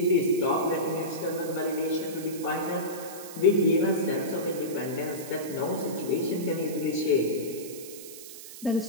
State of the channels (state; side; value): noise; right; hiss, 14 dB below the sound